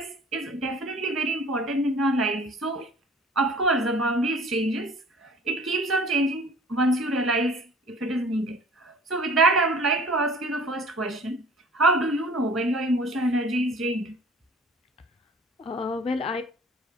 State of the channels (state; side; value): normal; both; correlation 0.48